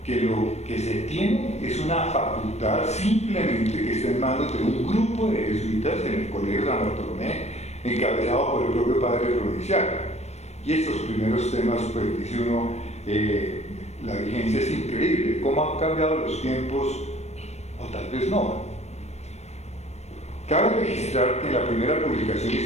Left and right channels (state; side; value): late; right; 0.32 ms